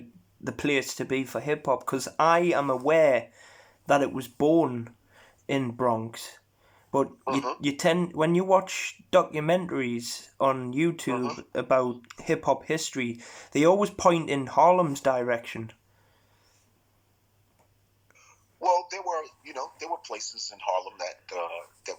the place to be for hip hop, because I am aware that it was born in Bronx, but you tend, when you watch documentaries on YouTube about hip hop history, they always point in Harlem's direction. Well, there were places in Harlem that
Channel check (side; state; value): both; identical; correlation 1.00